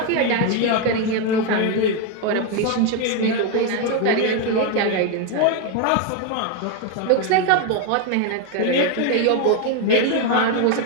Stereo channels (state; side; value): different; both; correlation 0.02